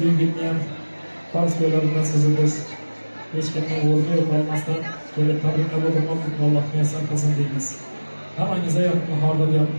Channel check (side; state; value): both; inverted; correlation -1.00